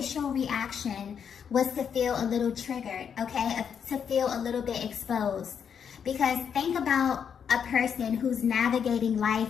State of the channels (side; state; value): right; quieter; 7.5 dB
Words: reaction was to feel a little triggered, okay? To feel a little bit exposed. Because think about a person who's navigating